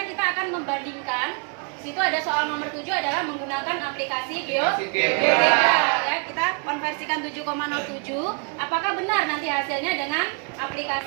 kita akan membandingkan. Di situ ada soal nomor 7 adalah menggunakan aplikasi GeoGebra. Ya, kita konversikan 7,07. Apakah benar nanti hasilnya dengan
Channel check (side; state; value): left; quieter; 38.7 dB